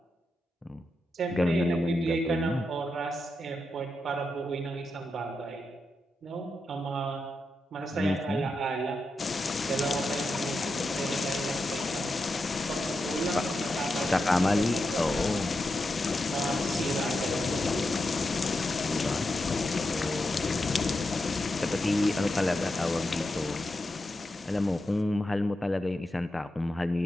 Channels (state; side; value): normal; both; correlation 0.87